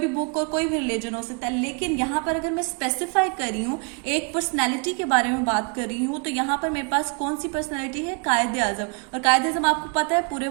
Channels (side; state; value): left; quieter; 36.2 dB